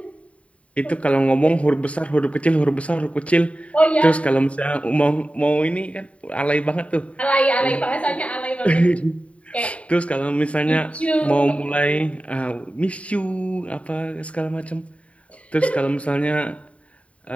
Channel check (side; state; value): right; late; 0.065 ms